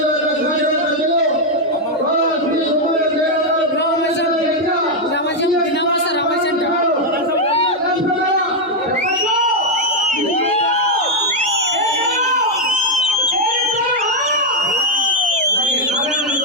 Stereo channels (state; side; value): normal; both; correlation 0.02